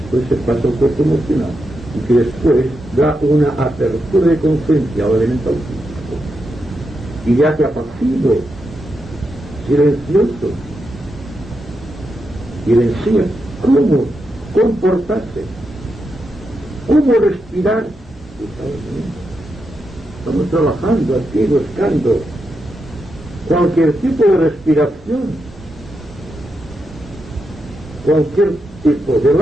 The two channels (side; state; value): both; normal; correlation 0.85